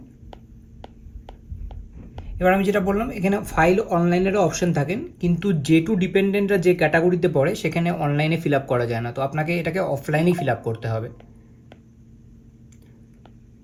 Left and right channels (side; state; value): both; identical; correlation 1.00